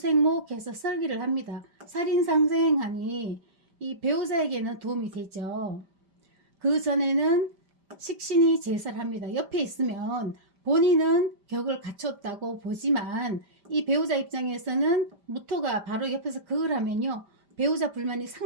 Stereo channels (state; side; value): late; left; 5.1 ms